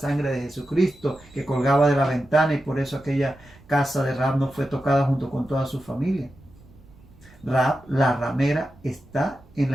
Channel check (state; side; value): noise; right; rumble, 25 dB below the sound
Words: de Jesucristo, que colgaba de la ventana, y por eso aquella casa de Rahab no fue tocada junto con toda su familia. Rahab, la ramera, está en